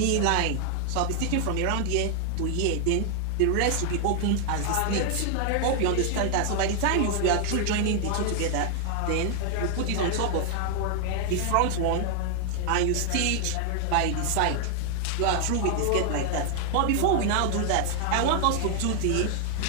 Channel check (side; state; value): both; different; correlation 0.00